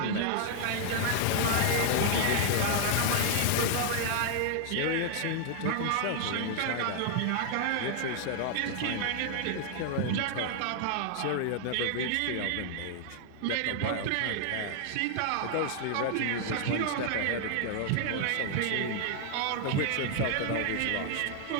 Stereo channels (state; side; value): different; both; correlation 0.00